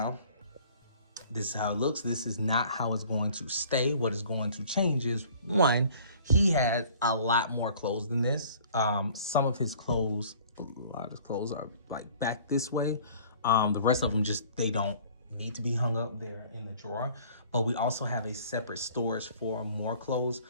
this is how it looks. This is not how it's going to stay. What is going to change is, one, he has a lot more clothes than this. Some of his clothes, a lot of his clothes are like back this way. The rest of them just, they don't need to be hung up there in the drawer. But we also have a separate storage for more clothes.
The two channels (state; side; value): inverted; both; correlation -0.51